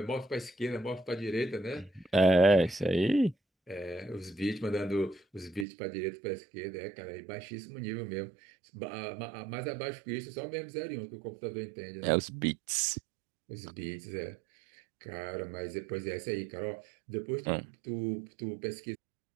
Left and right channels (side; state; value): left; drops out; at 5.7 s